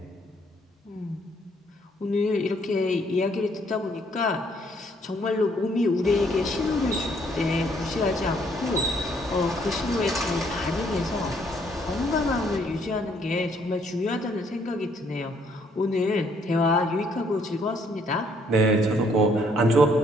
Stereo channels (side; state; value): both; normal; correlation 0.67